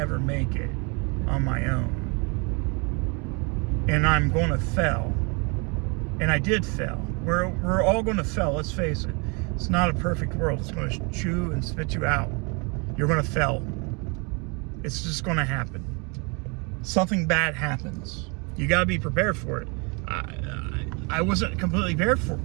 make it on my own. And I'm going to fail. And I did fail. We're all going to fail, let's face it. It's not a perfect world. It's going to chew and spit you out. You're going to fail. It's just going to happen. Something bad happens. You got to be prepared for it. I wasn't completely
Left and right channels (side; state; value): left; quieter; 32.1 dB